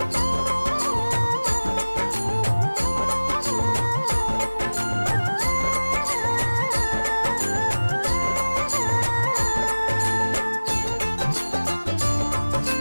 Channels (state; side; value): inverted; both; correlation -1.00